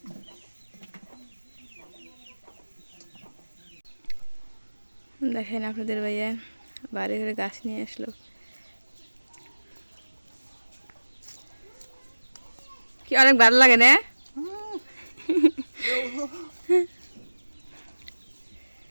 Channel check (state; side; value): inverted; both; correlation -1.00